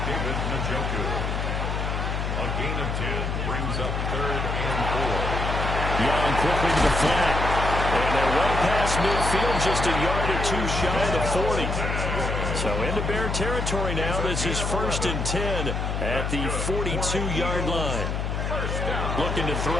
David Njoku. A gain of 10 brings up third and 4. Young quickly to the flat. And they're well past midfield, just a yard or two shy of the 40. So into Bear territory now. This is first and 10 at the 42-yard line. Looking to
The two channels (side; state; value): left; noise; hum, 2 dB below the sound